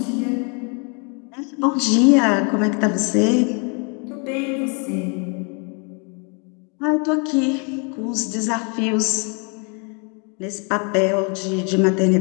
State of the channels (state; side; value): quieter; right; 35.4 dB